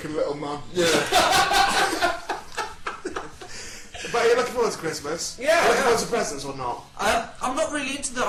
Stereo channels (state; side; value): identical; both; correlation 1.00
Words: little man. But are you looking forward to Christmas? Yeah, Are you looking yeah. forward to presents or not? I'm not really into the